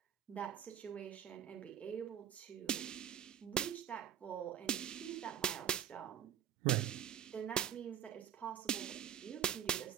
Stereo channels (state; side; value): quieter; left; 9.6 dB